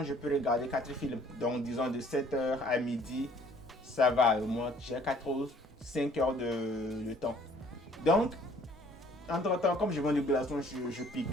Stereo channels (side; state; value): both; normal; correlation 0.58